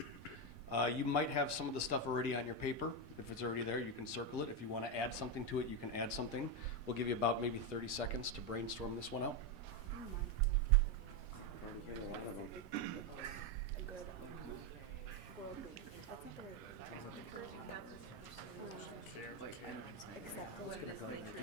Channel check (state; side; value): normal; both; correlation 0.08